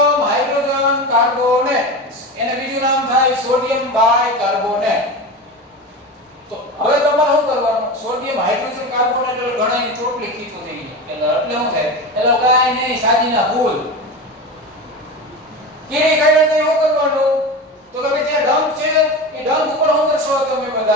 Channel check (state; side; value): normal; both; correlation 0.25